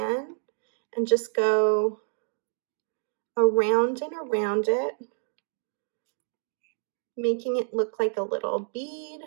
and just go around and around it, making it look like a little bead,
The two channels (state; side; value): silent; left; 59 dB below the other